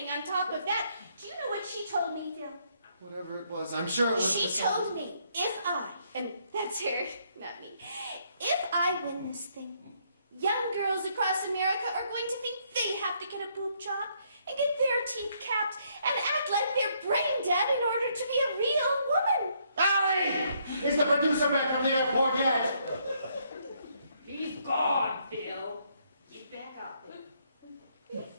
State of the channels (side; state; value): both; inverted; correlation -0.71